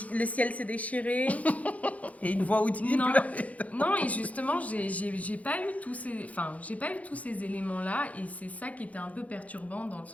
ciel s'est déchiré. Et une voix audible. Non, et justement, j'ai pas eu tous ces éléments-là, et c'est ça qui était un peu perturbant dans le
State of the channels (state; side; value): late; right; 0.069 ms